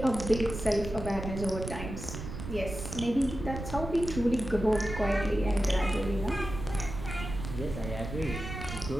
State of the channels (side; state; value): right; noise; rumble, 8 dB below the sound